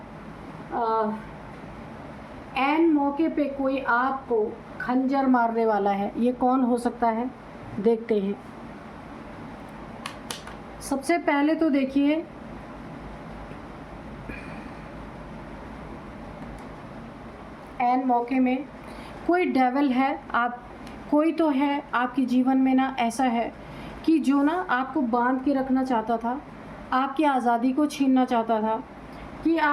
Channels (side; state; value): both; identical; correlation 1.00